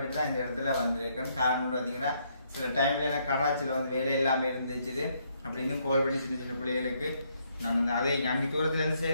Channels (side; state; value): both; inverted; correlation -0.72